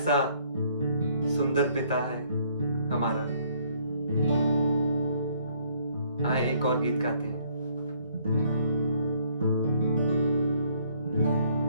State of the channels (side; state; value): both; inverted; correlation -0.64